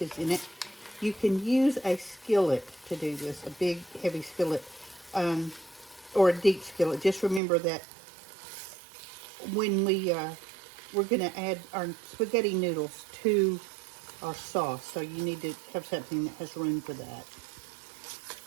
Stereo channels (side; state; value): left; drops out; at 7.4 s